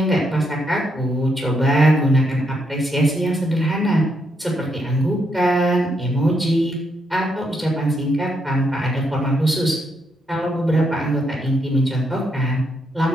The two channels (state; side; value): normal; both; correlation 0.78